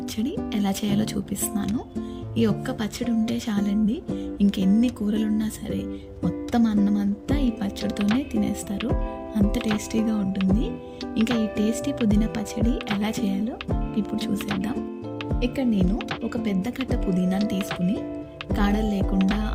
ఎలా చేయాలో చూపిస్తున్నాను. ఈ ఒక్క పచ్చడి ఉంటే చాలండి, ఇంకెన్ని కూరలున్నా సరే మొత్తం అన్నం అంతా ఈ పచ్చడితోనే తినేస్తారు. అంత టేస్టీగా ఉంటుంది. ఇంకా ఈ టేస్టీ పుదీనా పచ్చడి ఎలా చేయాలో ఇప్పుడు చూసేద్దాం. ఇక్కడ నేను ఒక పెద్ద కట్ట పుదీనాను తీసుకుని కాడలు లేకుండా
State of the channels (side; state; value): both; identical; correlation 1.00